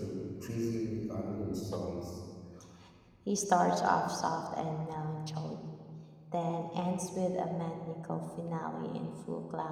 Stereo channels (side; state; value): both; identical; correlation 1.00